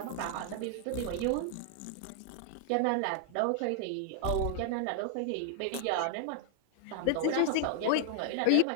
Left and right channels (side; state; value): both; different; correlation 0.00